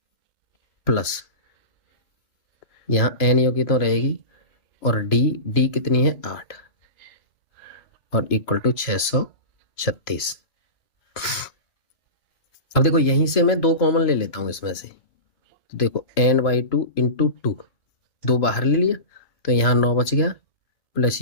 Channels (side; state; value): right; late; 2.6 ms